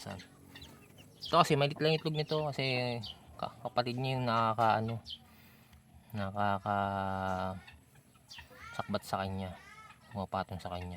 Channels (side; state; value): both; identical; correlation 1.00